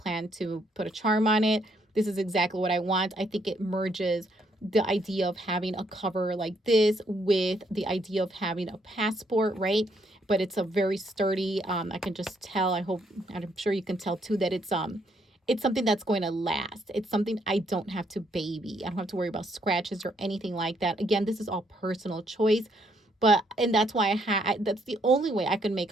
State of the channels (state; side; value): normal; both; correlation 0.71